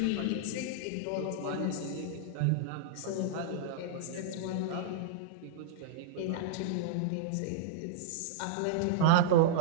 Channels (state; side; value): different; both; correlation -0.02